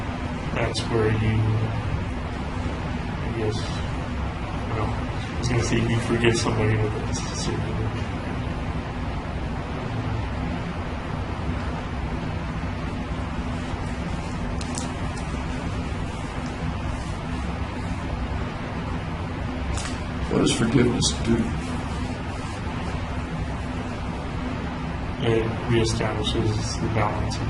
That's where you, I guess, well, I was going to say you forgive somebody, but that's certainly What does forgiveness do? it reestablishes the balance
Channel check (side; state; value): both; identical; correlation 1.00